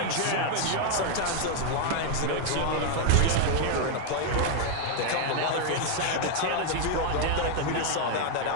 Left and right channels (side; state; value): both; different; correlation 0.00